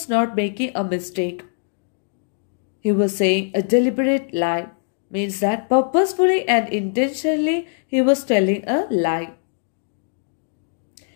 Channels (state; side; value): silent; right; digital silence